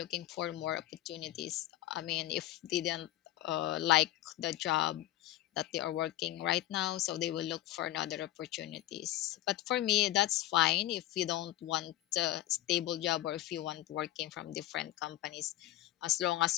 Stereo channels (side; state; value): right; quieter; 14.6 dB